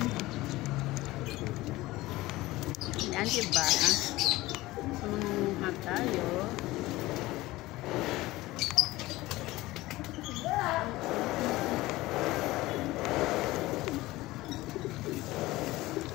Ayan, diba? Sumuha tayo.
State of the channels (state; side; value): quieter; right; 18.6 dB